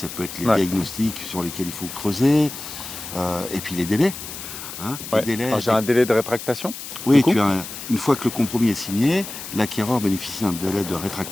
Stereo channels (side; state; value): left; noise; hiss, 10 dB below the sound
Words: peut être les diagnostics sur lesquels il faut creuser, et puis les délais. Les délais. Alors, j'ai un délai de rétractation? Oui, une fois que le compromis est signé, l'acquéreur bénéficie d'un délai de